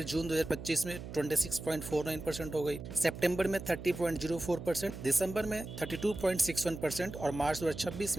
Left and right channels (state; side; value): noise; right; hum, 10 dB below the sound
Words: जून 2025 में 26.49% हो गई, सितंबर में 30.04%, दिसंबर में 32.61% और मार्च 2026